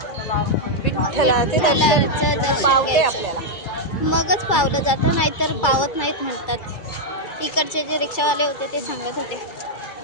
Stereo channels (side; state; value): right; late; 2.3 ms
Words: विठ्ठलाचे विठ्ठलाचं दर्शन घ्यायचं. मगच पावलं जातं, नाहीतर पावत नाहीत म्हणतात. इकडचे जे रिक्षावाले होते ते सांगत होते.